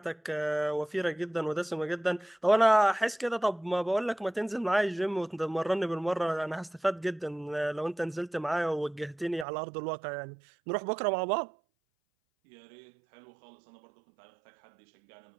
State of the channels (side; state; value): left; drops out; at 9.5 s